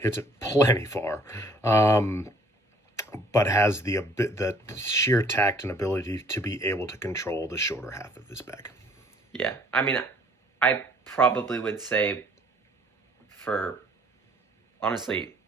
it plenty far, but has the sheer tact and ability to be able to control the shorter half of his bag. Yeah, I mean, I probably would say for, honestly,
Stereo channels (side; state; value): both; normal; correlation 0.59